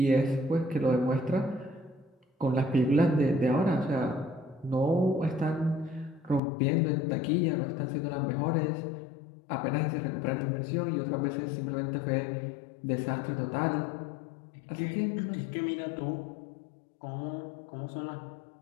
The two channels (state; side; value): drops out; right; at 6.4 s